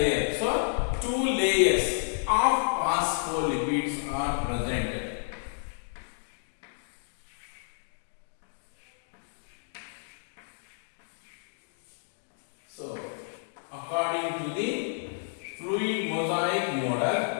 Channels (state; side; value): silent; right; digital silence